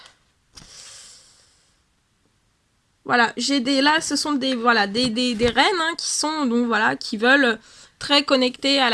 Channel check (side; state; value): both; identical; correlation 1.00